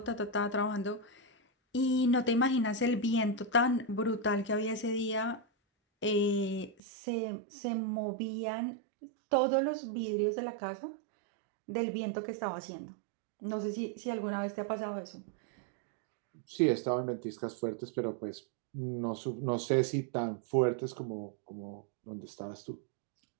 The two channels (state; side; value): drops out; left; at 6.8 s